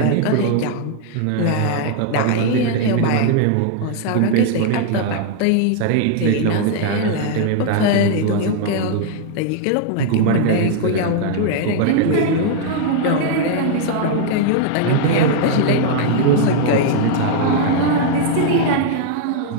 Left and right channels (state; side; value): different; both; correlation 0.00